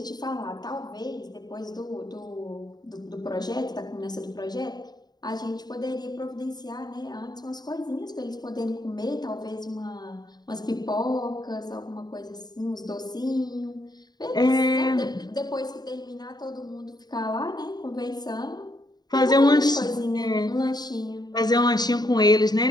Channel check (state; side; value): late; right; 0.20 ms